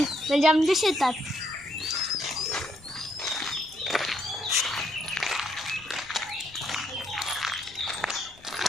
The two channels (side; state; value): left; noise; rumble, 24 dB below the sound